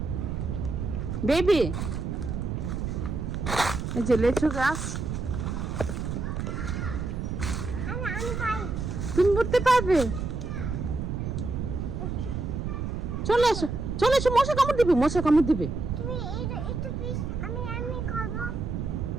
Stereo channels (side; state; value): right; noise; rumble, 3 dB below the sound